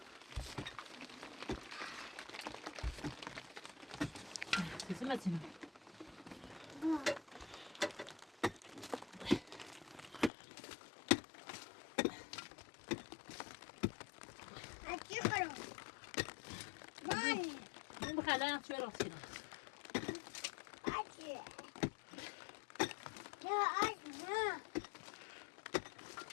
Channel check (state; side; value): drops out; right; at 10.3 s